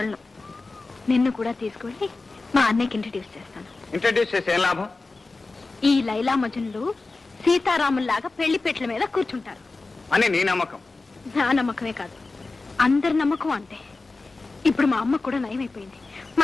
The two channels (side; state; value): right; quieter; 3.6 dB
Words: నిన్ను కూడా తీసుకువెళ్ళి మా అన్నయ్యకి ఇంట్రడ్యూస్ చేస్తాను. ఇంట్రడ్యూస్ చేసి ఏం లాభం? ఈ లైలా మజనులు సీతారాముల్లాగా పెళ్లి పెట్ల మీద కూర్చుంటారు అని నీ నమ్మకం. నా నమ్మకమే కాదు, అందరి నమ్మకం అంతే. ఇప్పుడు మా అమ్మ కూడా నయమైపోయింది,